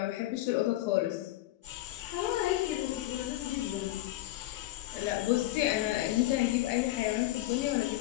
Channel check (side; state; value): right; quieter; 16.0 dB